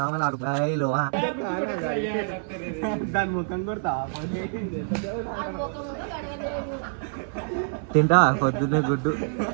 దాని ముఖం కొడతా తింటా పొద్దున్నే గుడ్డు.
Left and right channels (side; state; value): left; silent; 57 dB below the other